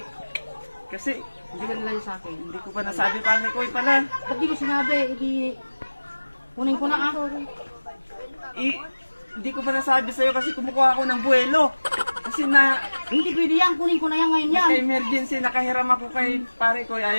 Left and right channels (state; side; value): inverted; both; correlation -1.00